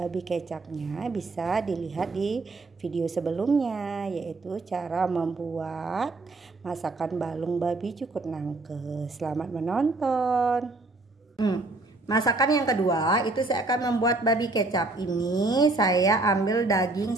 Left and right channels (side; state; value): left; quieter; 3.2 dB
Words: kecapnya bisa dilihat di video sebelumnya, yaitu cara membuat masakan balung babi cukur nangke. Selamat menonton. Masakan yang kedua itu saya akan membuat babi kecap. Ini saya ambil daging